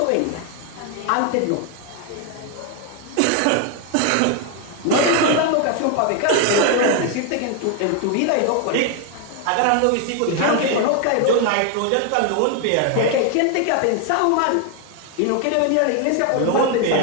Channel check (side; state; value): both; different; correlation 0.01